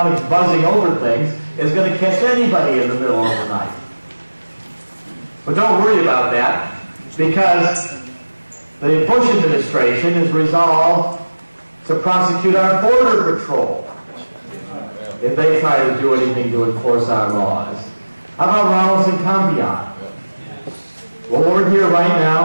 buzzing over things is going to catch anybody in the middle of the night. But don't worry about that, because the Bush administration is resolved to prosecute our border patrol if they try to do anything to enforce our laws. How about Ramos and Campion? Well, we're here right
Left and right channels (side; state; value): both; inverted; correlation -1.00